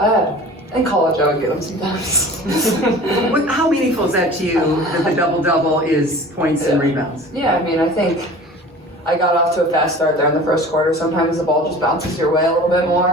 had. In college, I would get them sometimes. How meaningful is that to you, that the double-double is points and rebounds? Yeah, I mean, I think I got off to a fast start there in the first quarter. Sometimes the ball just bounces your way a little bit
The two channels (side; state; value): both; normal; correlation 0.41